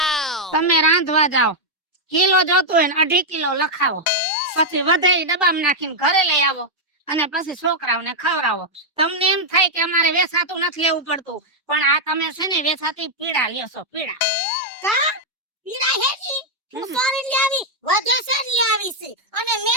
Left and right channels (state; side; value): normal; both; correlation -0.03